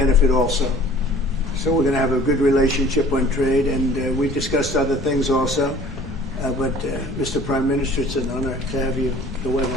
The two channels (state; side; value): normal; both; correlation 0.49